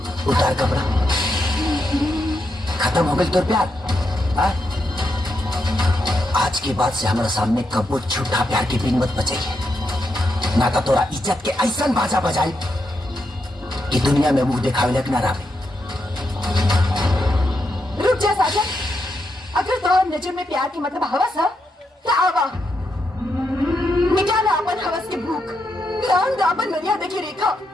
उतार कपड़ा। खत्म हो गई तो प्यार। हाँ? आज के बाद से हमारे सामने कबो झूठा प्यार की बीन मत बचाइए, ना तो तोरा इज्जत के ऐसा बाजा बजाई कि दुनिया में मुंह दिखावे लग ना रहे। रुक जा साजन, अगर तोहर नजर में प्यार के मतलब हवस है तो आवा मिटा ला अपन हवस की भूख, लांग दा अपन मर्यादा की रेखा,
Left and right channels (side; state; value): both; normal; correlation 0.82